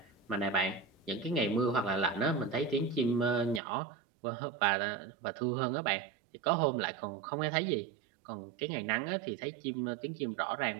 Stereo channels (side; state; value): left; drops out; at 3.6 s